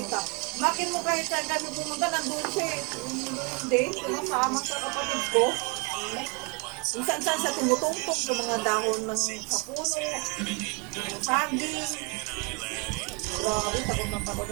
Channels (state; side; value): quieter; left; 30.2 dB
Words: Makin mo kahit saan kami pumunta, nandun siya eh. Hindi, sumasama sa kapatid ko. Minsan-san siya tumutungtong sa mga dahon ng kapuno, saging. Grabe, takot na takot